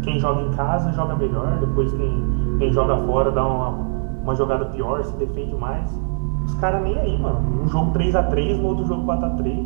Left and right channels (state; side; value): silent; left; 61 dB below the other